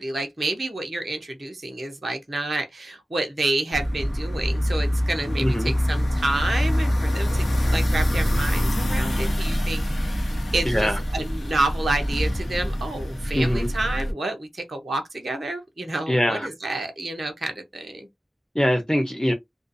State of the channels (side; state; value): both; normal; correlation 0.95